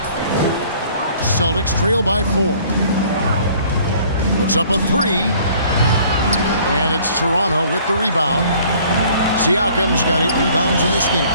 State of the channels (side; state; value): both; inverted; correlation -0.55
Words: Celtics trail by 4. Puts up a 3. And it's Toronto with the rebound. Siakam's got 8 rebounds in this game.